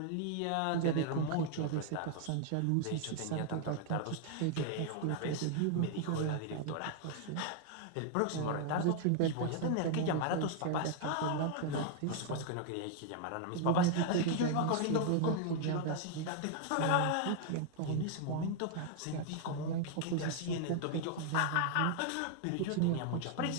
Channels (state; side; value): different; both; correlation 0.00